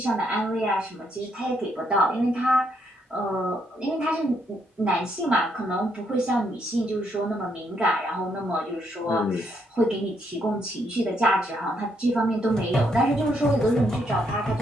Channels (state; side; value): normal; both; correlation 0.75